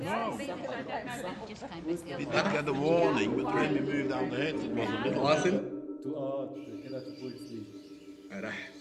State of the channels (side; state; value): both; identical; correlation 1.00